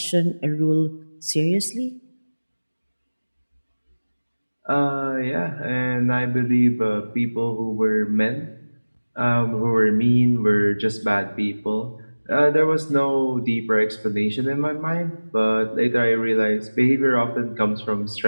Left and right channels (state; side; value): inverted; both; correlation -1.00